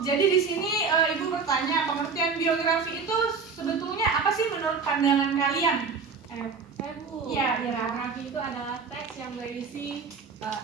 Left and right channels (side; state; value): left; quieter; 5.2 dB